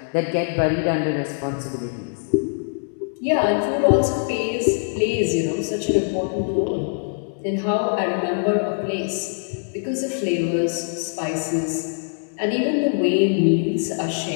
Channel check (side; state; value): right; silent; digital silence